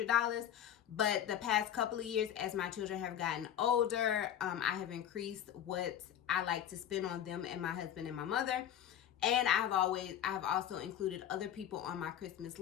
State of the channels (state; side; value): quieter; right; 10.2 dB